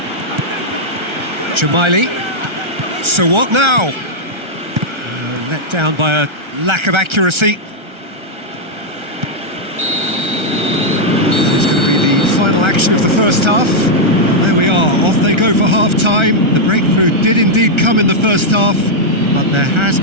Jamaili. So what now? Let down by a lack of accuracy. It's going to be the final action of the first half. Well, there we are, off they go for half-time. The breakthrough did indeed come in the first half, but there has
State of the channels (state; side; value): late; left; 1.3 ms